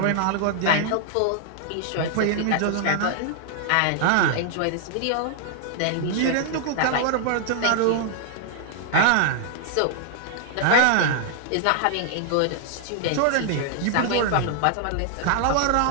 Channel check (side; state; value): both; different; correlation 0.00